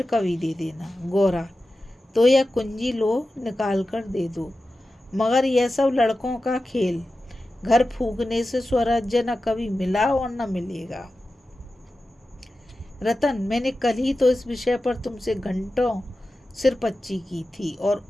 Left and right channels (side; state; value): both; normal; correlation 0.93